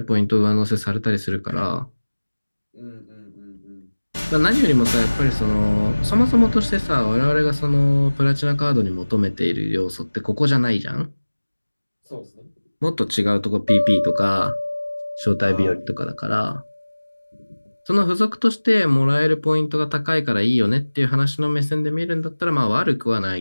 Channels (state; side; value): inverted; both; correlation -1.00